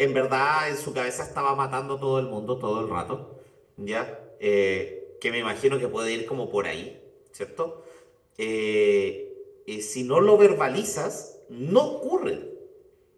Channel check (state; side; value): identical; both; correlation 1.00